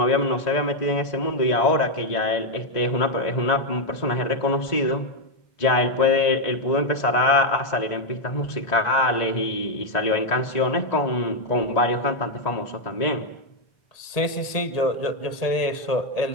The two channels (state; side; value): late; right; 1.7 ms